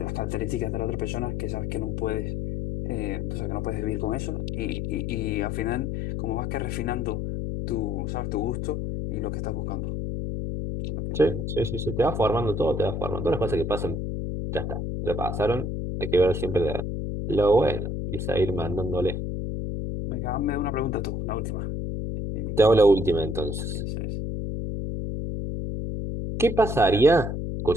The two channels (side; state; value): left; noise; hum, 2 dB below the sound